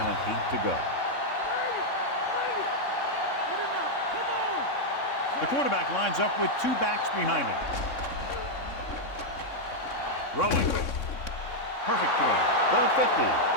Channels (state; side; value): late; right; 3.6 ms